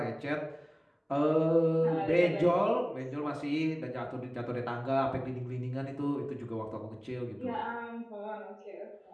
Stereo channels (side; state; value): both; identical; correlation 1.00